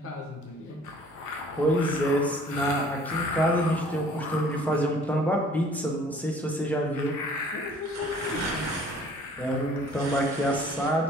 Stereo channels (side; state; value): both; normal; correlation 0.53